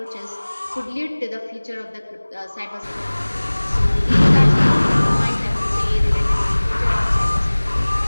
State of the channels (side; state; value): both; inverted; correlation -1.00